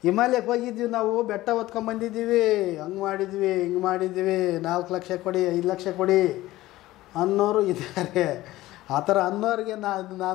ಹಿಮಾಲಯಕ್ಕೆ ಹೋಗಿದ್ವಿ ನಾವು, ಬೆಟ್ಟ ಹೊತ್ಕೊಂಬಂದಿದ್ದೀವಿ, ಹಂಗೆ ಮಾಡಿದ್ವಿ, ಹಿಂಗೆ ಮಾಡಿದ್ವಿ, 4 ಲಕ್ಷ ಕೊಡಿ, 5 ಲಕ್ಷ ಕೊಡಿ ಅನ್ನೋರು ಇದ್ದಾರೆ. ಆ ಥರ ಅನ್ನೋರಿಗೆ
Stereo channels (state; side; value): quieter; right; 16.8 dB